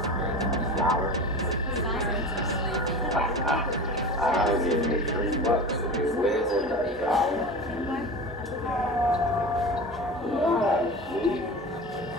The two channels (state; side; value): normal; both; correlation 0.32